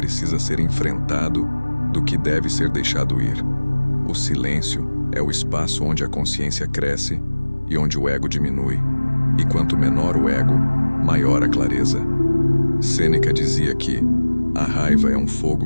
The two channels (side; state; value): both; inverted; correlation -1.00